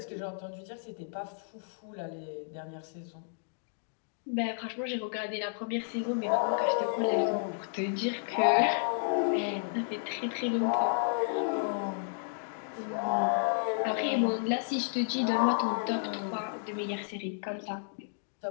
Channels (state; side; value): silent; right; digital silence